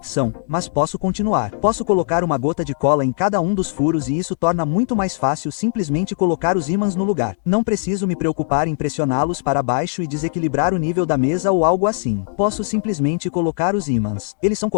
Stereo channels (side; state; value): right; silent; digital silence